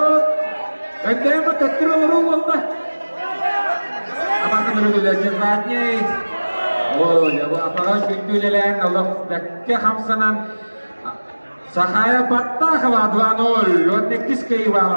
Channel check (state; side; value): inverted; both; correlation -1.00